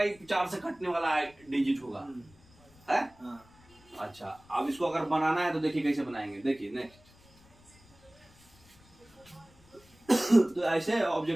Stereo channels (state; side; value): noise; left; rumble, 27 dB below the sound